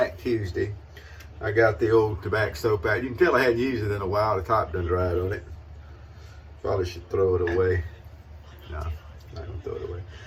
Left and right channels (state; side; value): identical; both; correlation 1.00